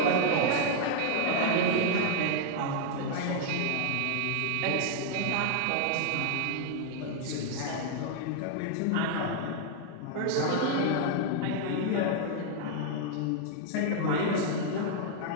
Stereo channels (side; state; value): both; different; correlation 0.00